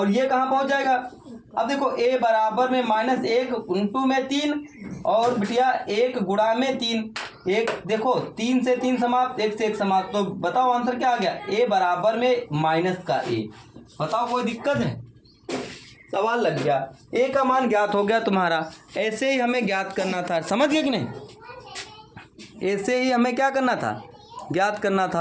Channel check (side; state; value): both; identical; correlation 1.00